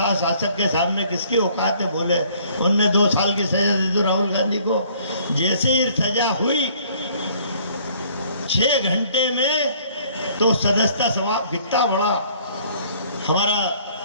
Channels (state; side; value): inverted; both; correlation -0.59